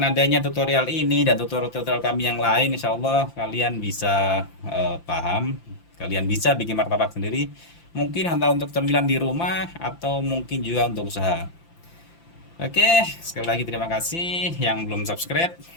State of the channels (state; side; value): late; right; 5.9 ms